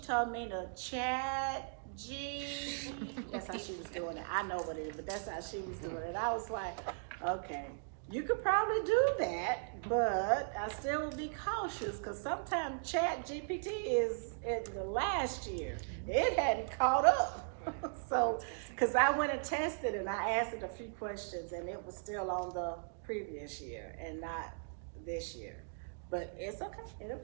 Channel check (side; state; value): left; silent; digital silence